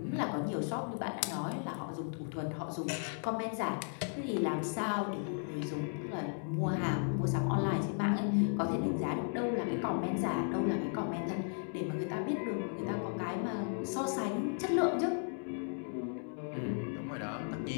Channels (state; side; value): silent; right; 54 dB below the other